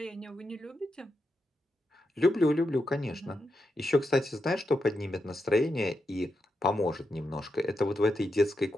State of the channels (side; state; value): both; normal; correlation 0.86